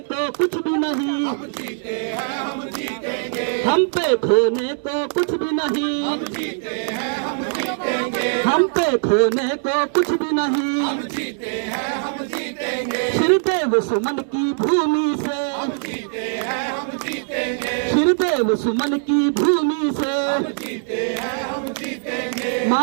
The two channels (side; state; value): left; silent; digital silence